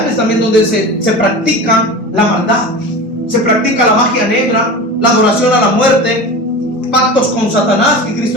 también donde se practica la maldad, se practica la magia negra, la adoración a la muerte, pactos con Satanás, que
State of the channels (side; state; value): both; normal; correlation 0.31